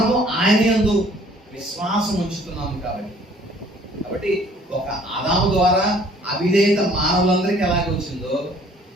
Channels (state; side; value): normal; both; correlation 0.56